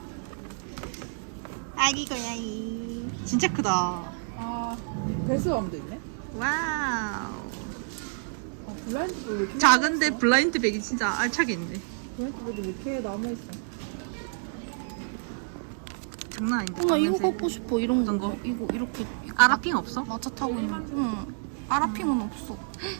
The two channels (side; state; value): left; silent; digital silence